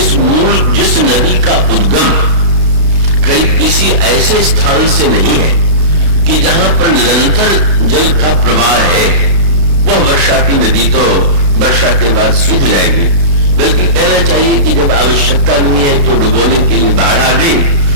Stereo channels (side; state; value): left; late; 34 ms